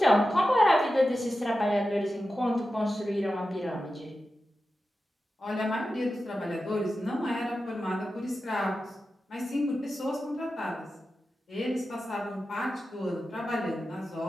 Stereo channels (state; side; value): normal; both; correlation 0.92